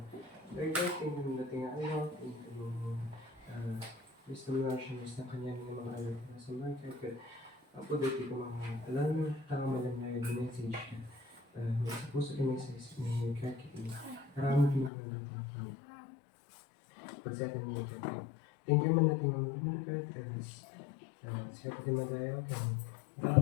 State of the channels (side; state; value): right; drops out; at 14.9 s